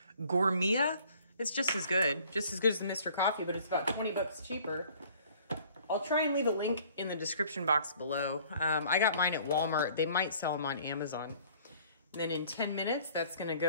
Gourmet. It's just as good as the Mr. Coffee, but it's about 20 bucks cheaper. I'll try and leave a link in the description box below. I got mine at Walmart. They might sell them on Amazon. And then in 10 minutes, that's gonna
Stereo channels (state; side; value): inverted; both; correlation -0.54